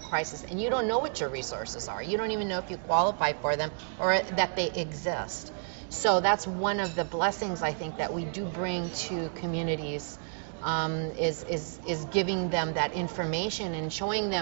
and you don't know what your resources are. You don't even know if you qualify for them or that they exist. So that's one of the blessings I think that we do bring to communities, is giving them that information and showing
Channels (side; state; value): left; silent; digital silence